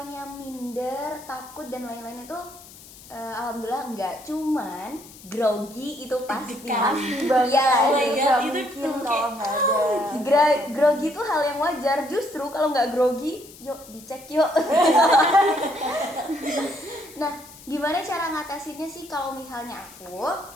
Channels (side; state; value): left; noise; hiss, 20 dB below the sound